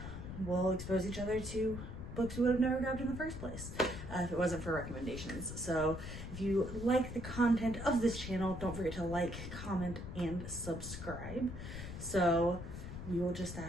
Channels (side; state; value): left; noise; rumble, 8 dB below the sound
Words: we'll expose each other to books we would have never grabbed in the first place if it wasn't for recommendations. So if you like the content of this channel, don't forget to like, comment, and subscribe. So we will just